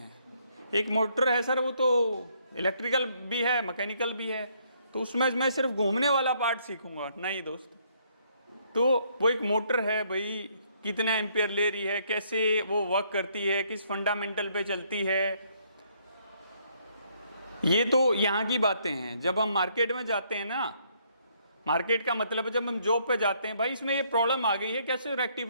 एक मोटर है सर, वो तो इलेक्ट्रिकल भी है, मैकेनिकल भी है, तो उसमें मैं सिर्फ घूमने वाला पार्ट सीखूंगा। नहीं दोस्त, तो वो एक मोटर है, भाई कितना एम्पियर ले रही है, कैसे वो वर्क करती है, किस फंडामेंटल पे चलती है, ये तो यहाँ की बातें हैं। जब हम मार्केट में जाते हैं ना, मार्केट का मतलब है जब हम जॉब पे जाते हैं, भाई इसमें ये प्रॉब्लम आ गई है, कैसे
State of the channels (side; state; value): both; inverted; correlation -0.69